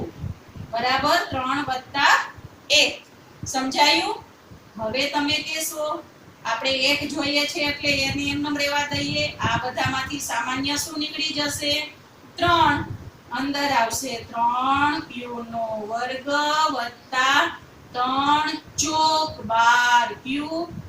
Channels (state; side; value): identical; both; correlation 1.00